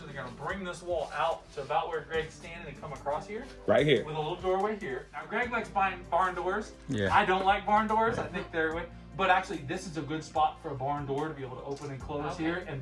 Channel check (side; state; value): both; identical; correlation 1.00